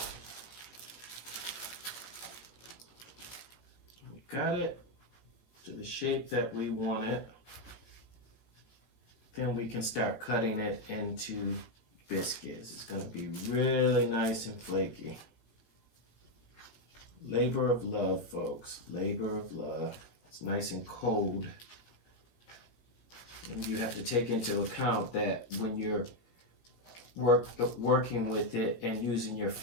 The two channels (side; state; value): right; late; 17 ms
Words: We got it to the shape that we want it. Then we can start cutting it into biscuits. It's going to be really nice and flaky. Labor of love, folks. Labor of love. It's nice and cold. And you have to take into account that when you're working with it and using your